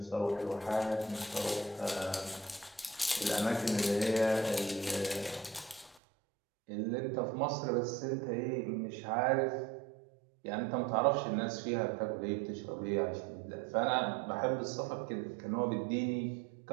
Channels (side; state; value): left; drops out; at 6.0 s